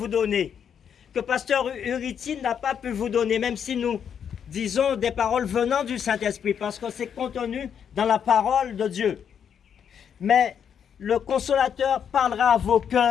donner, que pasteur Uriti n'a pas pu vous donner, même si nous disons des paroles venant du Saint-Esprit, parce que c'est contenu dans la parole de Dieu. Mais le consolateur parlera à vos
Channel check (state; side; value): quieter; right; 8.0 dB